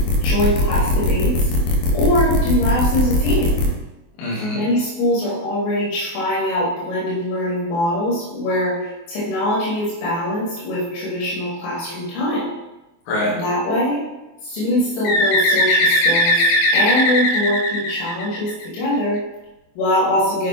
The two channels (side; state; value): right; late; 24 ms